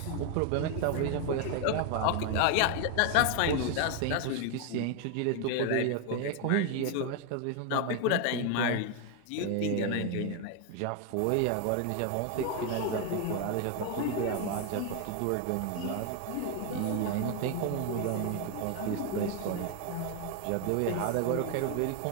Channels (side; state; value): both; different; correlation 0.01